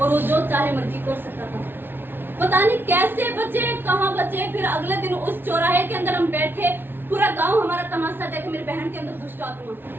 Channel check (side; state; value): left; late; 0.10 ms